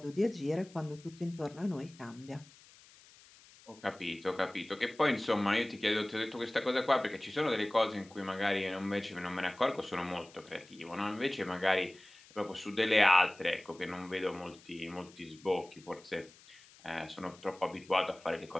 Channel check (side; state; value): left; noise; hiss, 24 dB below the sound